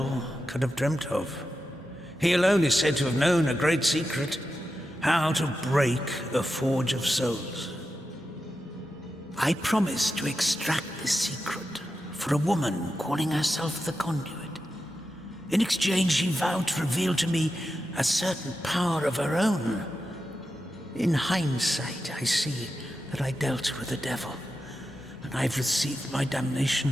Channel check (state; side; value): normal; both; correlation 0.90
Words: could have dreamt of. He alone is said to have known a great secret, how to break a forge of souls. I promised to extract this secret for a woman calling herself the Conduit. In exchange, she vowed to reveal to me a certain power of her own. In hindsight, I see that I dealt with the devil, and I've received my